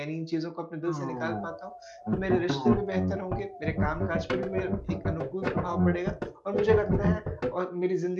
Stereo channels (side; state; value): both; identical; correlation 1.00